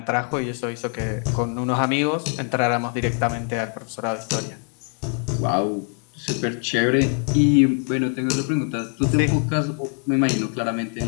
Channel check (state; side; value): quieter; right; 39.9 dB